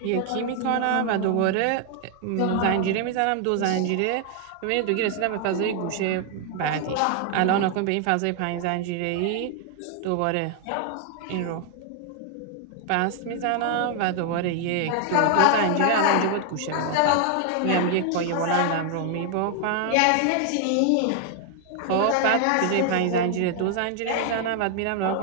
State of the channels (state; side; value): different; both; correlation 0.00